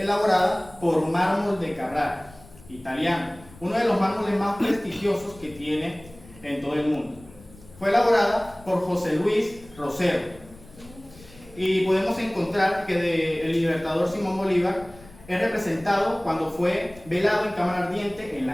por mármol de Carrara, italiano, uno de los mármoles más prestigiosos que tiene en todo el mundo. Fue elaborada por José Luis Rosero y podemos encontrar que el Libertador Simón Bolívar es representado cuando fue velado en cámara ardiente en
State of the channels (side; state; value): left; noise; rumble, 22 dB below the sound